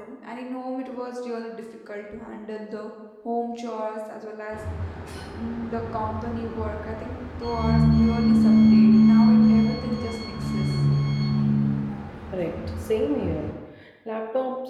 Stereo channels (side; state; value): both; identical; correlation 1.00